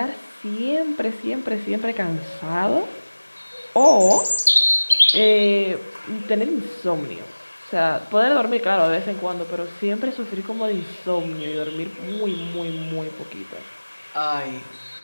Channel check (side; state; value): both; inverted; correlation -1.00